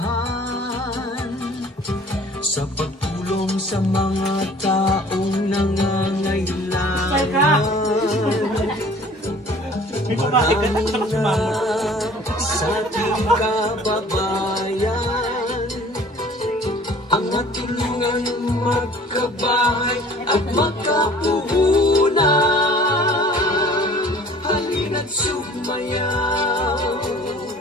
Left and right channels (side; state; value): both; normal; correlation 0.50